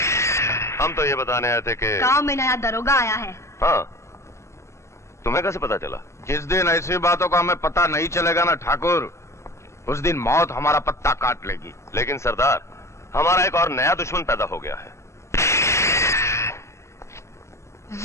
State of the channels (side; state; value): right; late; 0.13 ms